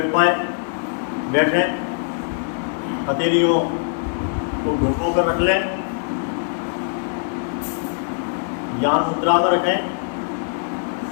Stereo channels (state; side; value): silent; right; digital silence